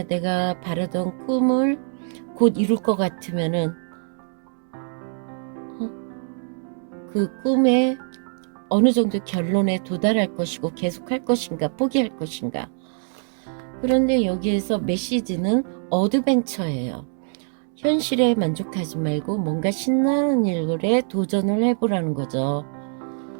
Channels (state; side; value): silent; left; 57 dB below the other